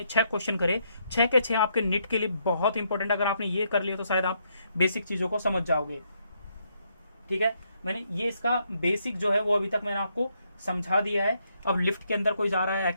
6 क्वेश्चन करे, 6 के 6 आपके नीट के लिए बहुत इंपॉर्टेंट। अगर आपने ये कर लिया तो शायद आप बेसिक चीजों को समझ जाओगे। ठीक है, मैंने ये इसका बेसिक जो है वो अभी तक मैंने आपको समझा दिया है। अब लिफ्ट के अंदर कोई जा रहा है,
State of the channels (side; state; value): both; inverted; correlation -0.75